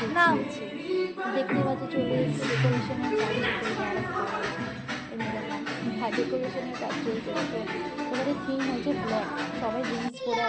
দেখতে পাচ্ছি চলে এসেছে ডেকোরেশনের কাজ ডেকোরেশনের কাজ চলছে। এবারে থিম হচ্ছে ব্ল্যাক, সবাই জিন্স পরে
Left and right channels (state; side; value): identical; both; correlation 1.00